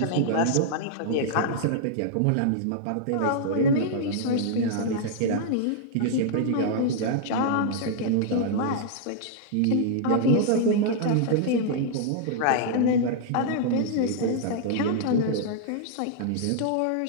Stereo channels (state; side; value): different; both; correlation -0.01